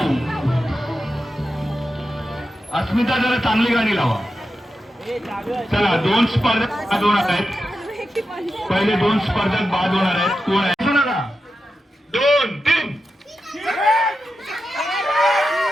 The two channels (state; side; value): normal; both; correlation 0.90